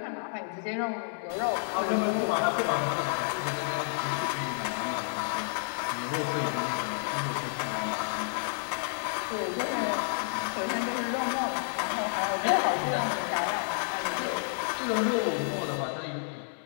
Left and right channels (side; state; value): right; silent; 58 dB below the other